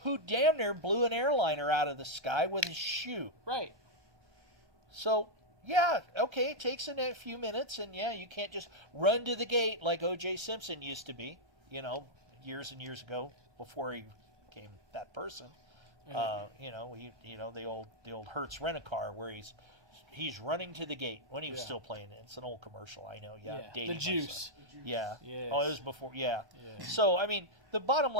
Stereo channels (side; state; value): both; normal; correlation -0.03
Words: who damn near blew an airliner out of the sky with his shoe. Right. So, yeah, okay, it takes a few minutes, and yeah, you can't just run to the gate like O.J. Simpson used to be, years and years ago before he became that person. The old Hertz Rent-A-Car where he's running to the gate when he was still playing it. It's an old commercial, I know. Yeah, the juice. Yeah. Yes. Oh, it was before. Yeah. So I mean, the bottom